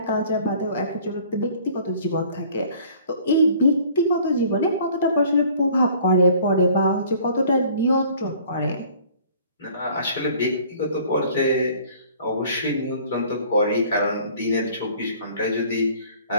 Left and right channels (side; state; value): both; inverted; correlation -0.53